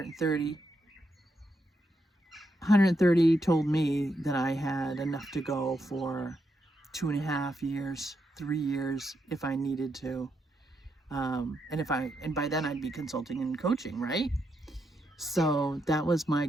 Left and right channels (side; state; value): both; normal; correlation 0.81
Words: told me that I had enough to go for 2.5 years, 3 years, if I needed to. And by then I'd be consulting and coaching, right? So that was my